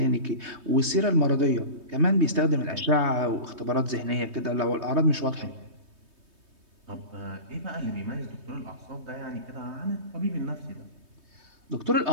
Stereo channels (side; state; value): left; late; 3.2 ms